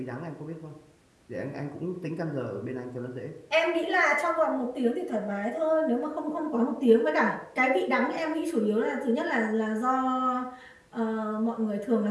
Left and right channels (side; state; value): both; identical; correlation 1.00